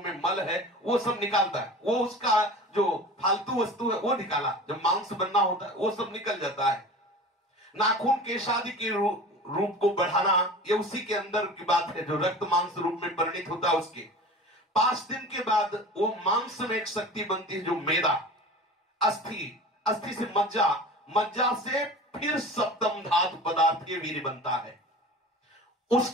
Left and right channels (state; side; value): normal; both; correlation 0.37